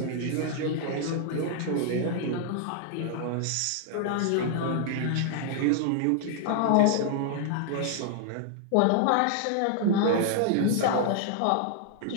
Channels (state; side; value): different; both; correlation 0.00